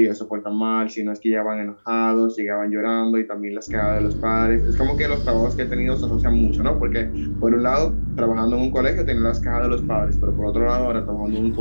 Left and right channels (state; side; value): inverted; both; correlation -1.00